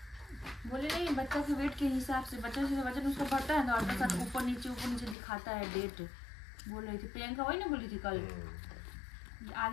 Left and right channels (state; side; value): drops out; right; at 5.2 s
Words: बोले नहीं, बच्चा के वेट के हिसाब से बच्चा से वजन उसका बढ़ता है ना, अल्ट्रासाउंड ऊपर नीचे दिखाता है डेट। बोल रही थी प्रियंका, वही ना बोली थी कल,